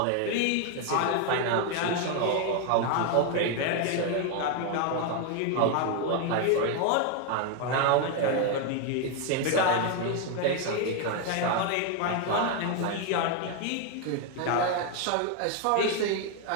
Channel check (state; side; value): different; both; correlation 0.01